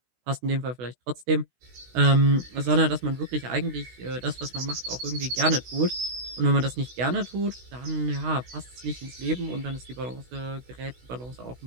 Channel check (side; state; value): left; late; 16 ms